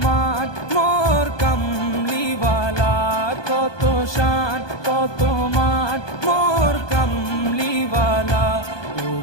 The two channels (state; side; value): late; right; 1.2 ms